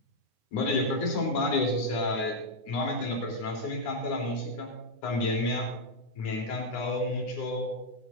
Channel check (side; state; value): right; late; 9.8 ms